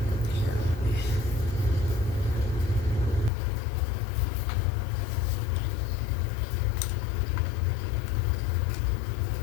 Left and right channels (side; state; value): right; drops out; at 3.3 s